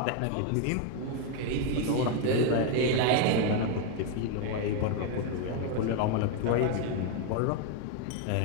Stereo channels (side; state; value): both; different; correlation 0.01